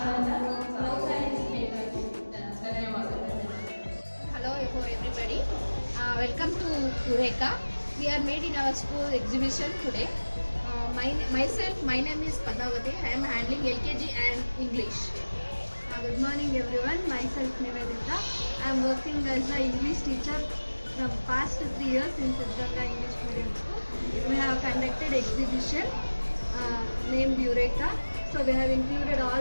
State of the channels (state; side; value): inverted; both; correlation -1.00